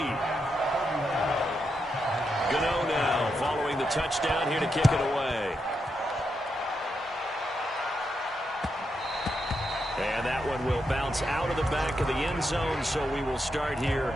Gano now following the touchdown here to kick it away. And that one will bounce out of the back of the end zone, so we will start here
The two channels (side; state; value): both; normal; correlation 0.84